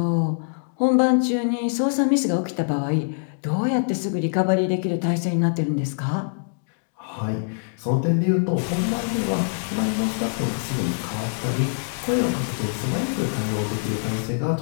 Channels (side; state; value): right; silent; digital silence